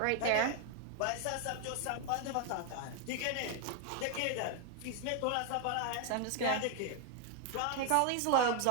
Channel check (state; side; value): different; both; correlation 0.00